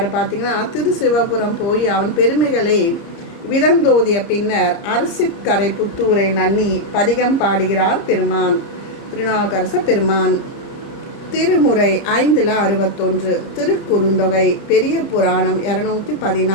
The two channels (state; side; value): late; right; 30 ms